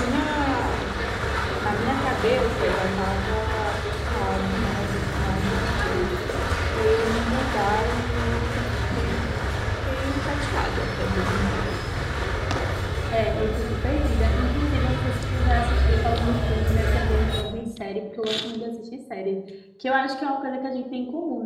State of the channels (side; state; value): both; identical; correlation 1.00